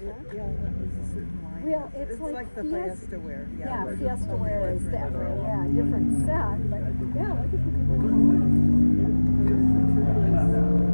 Yeah, that was a certain line. Well, it's like the Fiesta- Fiesta wear. Yeah, but Fiesta only wear is different definitely, colors. yeah, different set, but yeah, look at the different colors.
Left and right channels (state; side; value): inverted; both; correlation -1.00